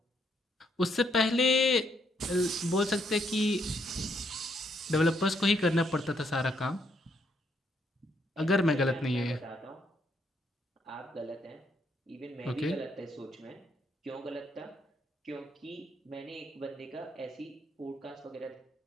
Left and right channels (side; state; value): both; normal; correlation 0.73